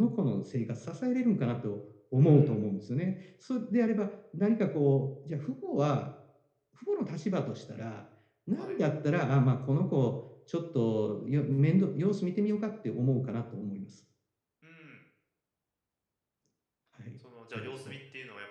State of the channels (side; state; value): both; identical; correlation 1.00